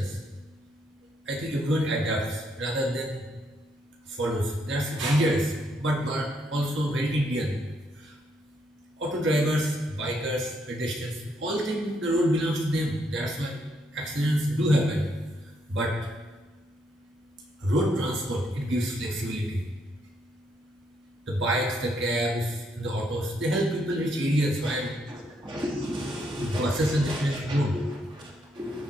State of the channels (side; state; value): both; normal; correlation 0.75